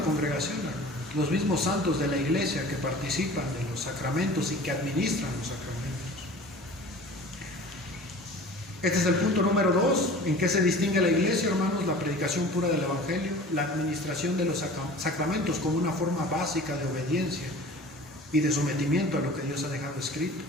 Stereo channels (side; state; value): both; normal; correlation 0.42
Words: congregación, los mismos santos de la iglesia que participan de los sacramentos y que administran los sacramentos. Este es el punto número 2. ¿En qué se distingue la iglesia, hermanos? La predicación pura del Evangelio, la administración de los sacramentos como una forma básica de obediencia y de sometimiento a lo que Dios ha dejado escrito.